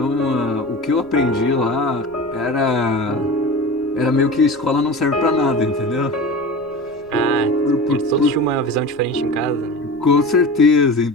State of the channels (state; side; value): noise; left; rumble, 29 dB below the sound